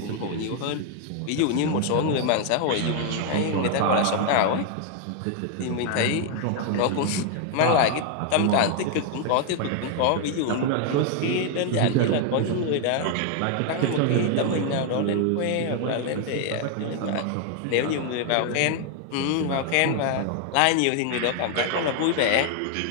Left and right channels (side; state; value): both; different; correlation 0.00